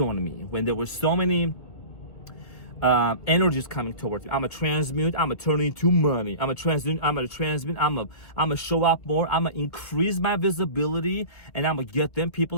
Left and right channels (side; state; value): right; late; 1.9 ms